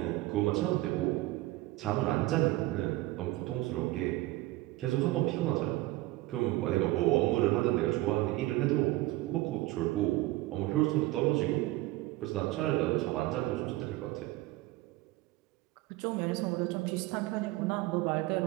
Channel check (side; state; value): left; quieter; 18.5 dB